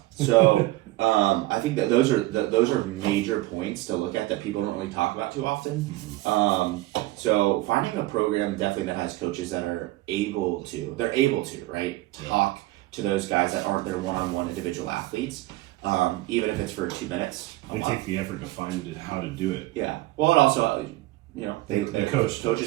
So I think that those are major points to look at that people don't really talk about too often. So finding a program definitely that has coaches that are able to talk to those guys that aren't their one-on-one individual athletes, even if it's for 2 minutes. They take the effort to find how to do it. Yeah. Well, it also,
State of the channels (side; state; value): left; quieter; 18.6 dB